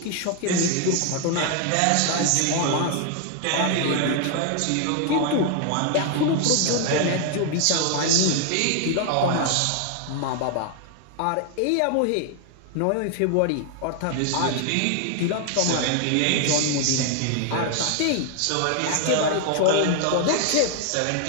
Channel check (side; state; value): both; different; correlation 0.00